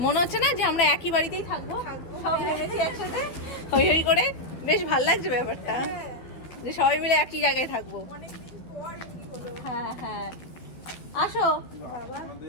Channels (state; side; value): late; right; 12 ms